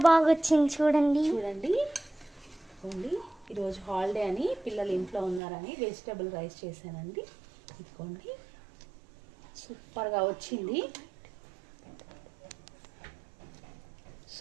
బాగా వచ్చింది, చూడండి. ఈరోజు హాలిడే అని పిల్లలు ఇంట్లో ఉన్నారని వెజిటబుల్ రైస్ చేశానండి. ఇదిగోండి, సూపర్గా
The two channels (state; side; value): drops out; left; at 5.4 s